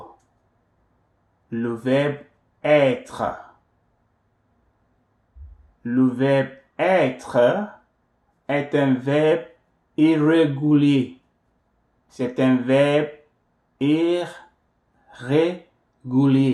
Le verbe être. Le verbe être est un verbe irrégulier. C'est un verbe irrégulier.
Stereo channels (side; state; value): both; identical; correlation 1.00